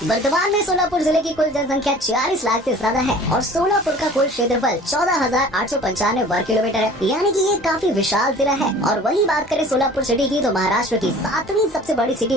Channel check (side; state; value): both; normal; correlation 0.46